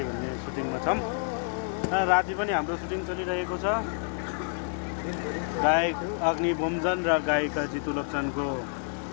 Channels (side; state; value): right; silent; 56 dB below the other